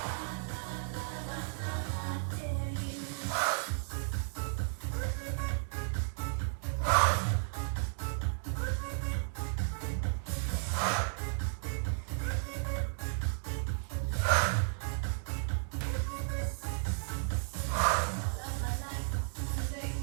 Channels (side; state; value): left; silent; digital silence